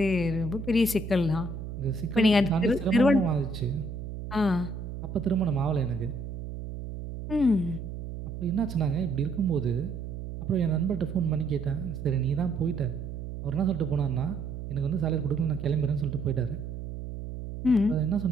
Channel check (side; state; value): right; noise; hum, 8 dB below the sound